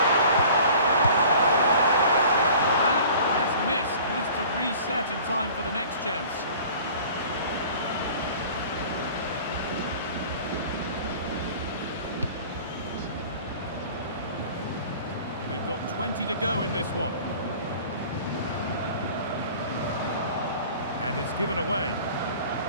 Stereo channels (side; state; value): both; inverted; correlation -0.46